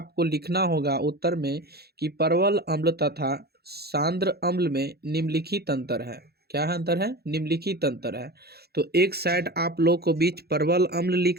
लिखना होगा उत्तर में कि परवल अम्ल तथा सांद्र अम्ल में निम्नलिखित अंतर है। क्या अंतर है? निम्नलिखित अंतर है। तो एक साइड आप लोग को बीच परवल अम्ल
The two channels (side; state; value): left; late; 0.46 ms